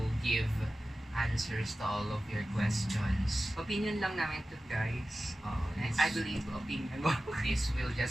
give answers to all of your questions. Opinion lang namin to guys. I believe opinion mo. This will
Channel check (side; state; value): both; normal; correlation 0.95